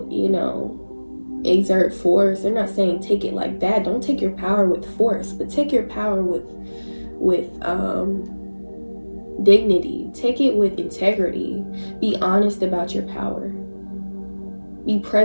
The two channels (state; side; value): inverted; both; correlation -1.00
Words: exert force. They're not saying take it like that. Don't take your power with force, but take your power with dignity. Take it with integrity. Be honest about your power. Be